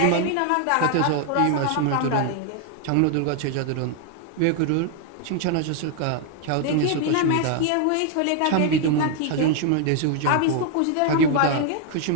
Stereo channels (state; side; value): different; both; correlation 0.00